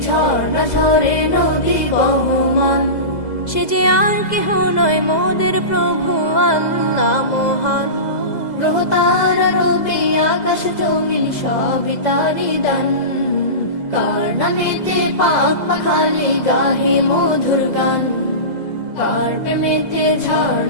ঝর্ণা ঝরে নদী বহমান। সে যে আর কেহ নয় মোদের প্রভু আল্লাহ মহান, গ্রহ তারা রবি আকাশ জমিন সবই তারি দান। কার নামেতে পাক পাখালি গাহে মধুর গান, কার প্রেমেতে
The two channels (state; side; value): late; right; 2.0 ms